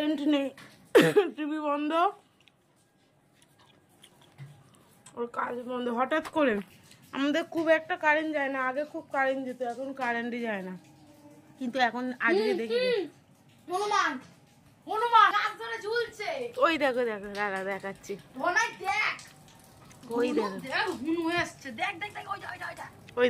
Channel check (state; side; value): identical; both; correlation 1.00